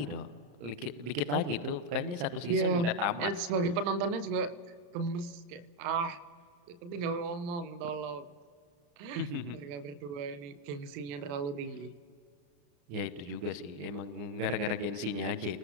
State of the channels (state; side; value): late; left; 34 ms